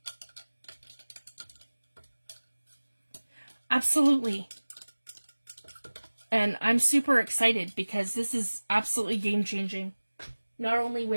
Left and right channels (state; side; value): inverted; both; correlation -1.00